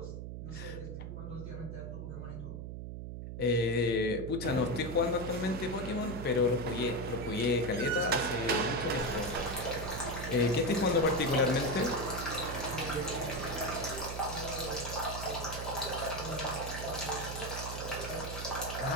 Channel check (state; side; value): noise; right; hum, 7 dB below the sound